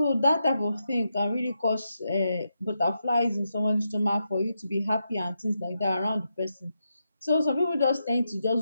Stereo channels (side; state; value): both; inverted; correlation -0.85